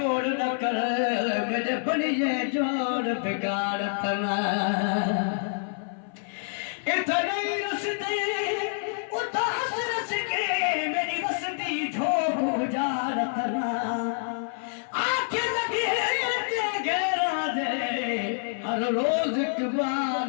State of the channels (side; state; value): right; silent; 57 dB below the other